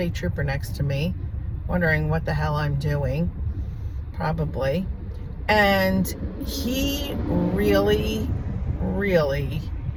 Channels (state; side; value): identical; both; correlation 1.00